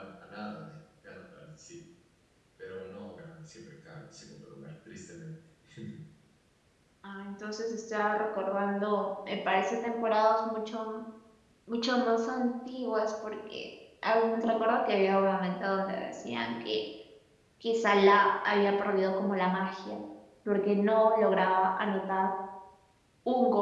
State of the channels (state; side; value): identical; both; correlation 1.00